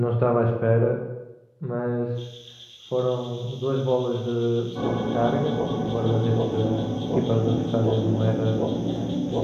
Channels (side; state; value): both; identical; correlation 1.00